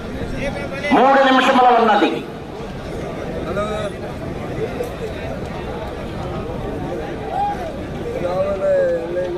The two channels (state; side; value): identical; both; correlation 1.00